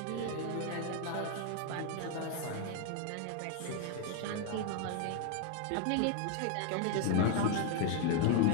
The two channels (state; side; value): different; both; correlation 0.00